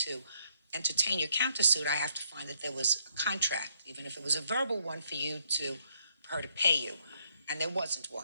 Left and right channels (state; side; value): inverted; both; correlation -0.71